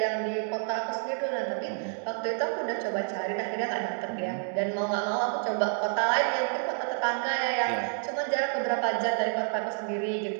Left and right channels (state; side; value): silent; left; 59 dB below the other